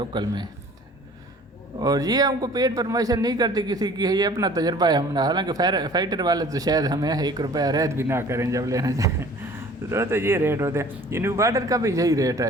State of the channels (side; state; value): both; normal; correlation 0.49